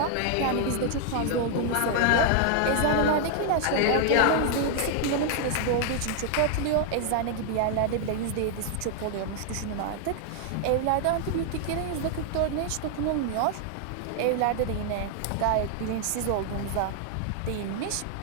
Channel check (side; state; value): both; different; correlation 0.00